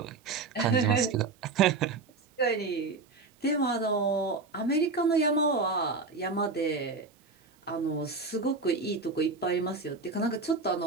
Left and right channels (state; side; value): quieter; left; 4.0 dB